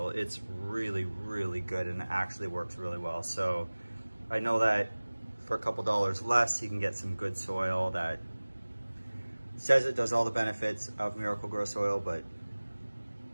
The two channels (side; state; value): both; inverted; correlation -1.00